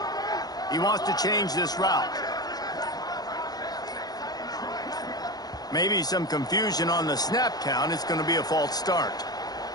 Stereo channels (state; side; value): late; right; 0.19 ms